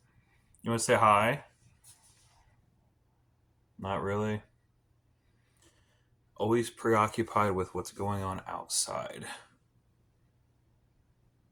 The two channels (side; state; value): both; identical; correlation 1.00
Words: You want to say hi? Not really. Always preoccupied with what's going on outside.